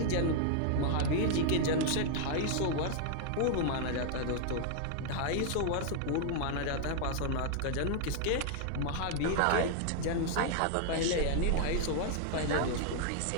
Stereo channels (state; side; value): different; both; correlation 0.00